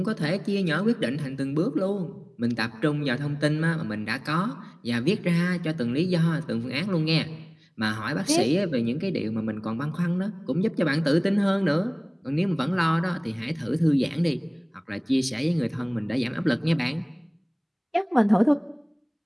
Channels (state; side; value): identical; both; correlation 1.00